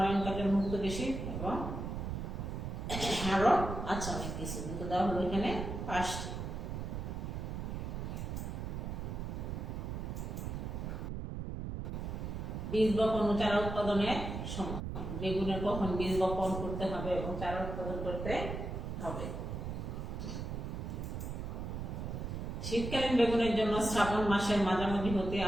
কাজল, মুক্তকেশী এবং আরো আছে অনেক কিছু, কিন্তু দেওয়া হলো এখানে 5টি। বীজ বপন ও চারা উৎপাদনের সময়: বেগুনের কখন বীজ বপন করতে হবে এবং চারা উৎপাদন করতে হবে? শীতকালীন বেগুনের জন্য শ্রাবণ মাসের মাঝামাঝি হতে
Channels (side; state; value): right; noise; rumble, 4 dB below the sound